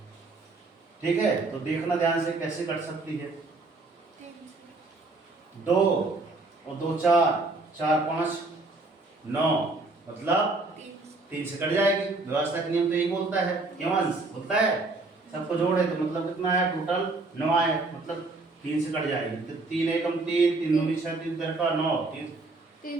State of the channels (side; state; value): left; quieter; 3.3 dB